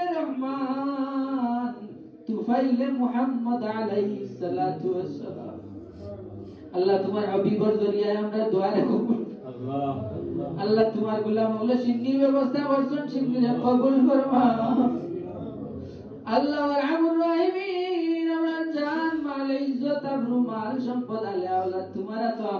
রহমান তুফাইলে মুহাম্মদ আলাইহিস সালাতু ওয়াস সালাম। আল্লাহ তোমার হাবিবের জরিয়ায় আমরা দোয়া কবুল আল্লাহ। আল্লাহ তোমার গোলাম হলে সিন্নির ব্যবস্থা করছেন, সিন্নির কবুল ফরমাও। আল্লাহ আরহামুর রাহিমিন আমরা জান মাল ইজ্জত আবরু মাল সম্পদ আলে আওলাদ তোমারা তো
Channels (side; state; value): both; identical; correlation 1.00